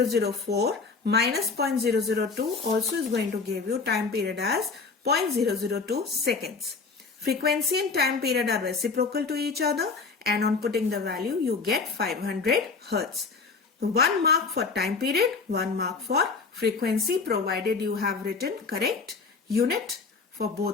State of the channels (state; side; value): quieter; right; 4.5 dB